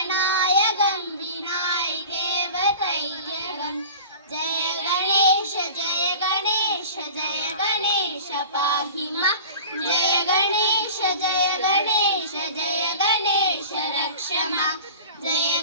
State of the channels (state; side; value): inverted; both; correlation -0.38